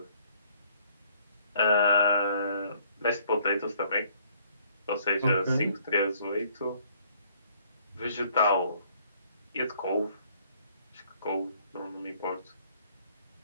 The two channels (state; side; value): inverted; both; correlation -0.62